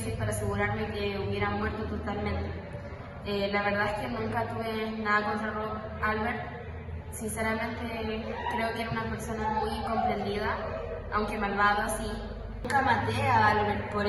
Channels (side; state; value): both; identical; correlation 1.00